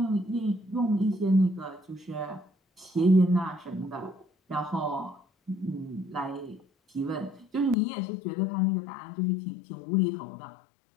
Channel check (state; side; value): drops out; right; at 7.8 s